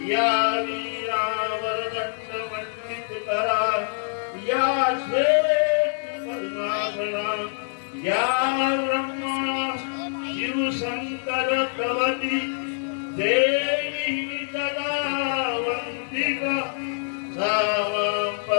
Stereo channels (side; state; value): right; silent; 56 dB below the other